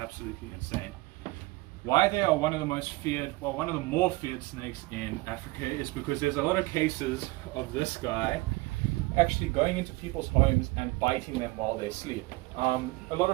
insane. Why they are one of the most feared, well, one of the more feared snakes in Africa is because there's a lot of cases of this guy actually going into people's homes and biting them while they sleep. A lot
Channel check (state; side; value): quieter; left; 22.2 dB